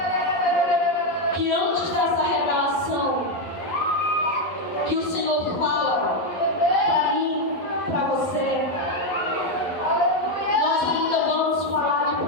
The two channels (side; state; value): right; late; 11 ms